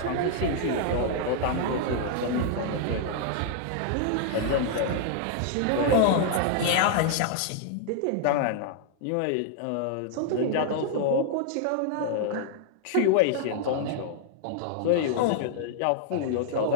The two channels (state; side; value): different; both; correlation -0.01